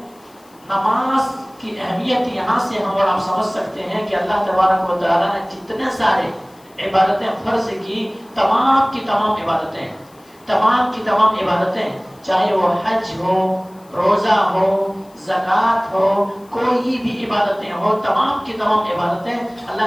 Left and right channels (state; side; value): noise; left; hiss, 29 dB below the sound